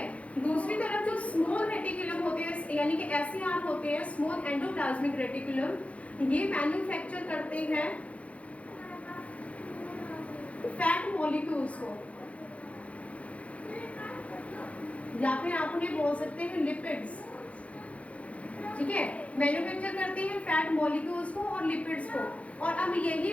दूसरी तरफ जो स्मॉल रेटिकुलम होते हैं, यानी कि SER होते हैं, स्मॉल एंडोप्लाज्मिक रेटिकुलम, ये मैन्युफैक्चर करते हैं फैट मॉलिक्यूल्स को, या फिर आप उन्हें बोल सकते हैं लिपिड्स। ठीक है, मैन्युफैक्चर करते हैं फैट मॉलिक्यूल्स को और लिपिड्स को, और अब यही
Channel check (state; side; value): late; right; 0.064 ms